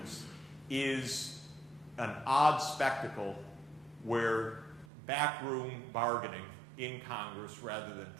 is an odd spectacle where backroom bargaining in Congress rather than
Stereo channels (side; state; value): left; drops out; at 4.9 s